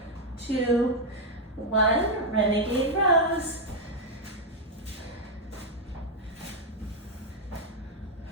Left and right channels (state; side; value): normal; both; correlation 0.00